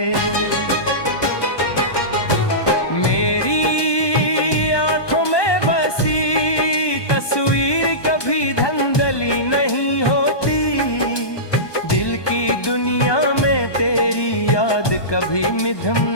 मेरी आंखों में बसी तस्वीर कभी धंधली नहीं होती, दिल की दुनिया में तेरी याद कभी मिधम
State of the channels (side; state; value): right; late; 1.2 ms